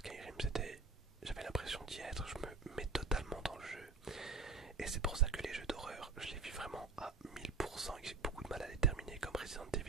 j'avais l'impression d'y être, je me mets totalement dans le jeu. Et c'est pour ça que les jeux d'horreur, je les vis vraiment à 1000% et que j'ai beaucoup de mal à les terminer, comme Resident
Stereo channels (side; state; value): left; quieter; 4.2 dB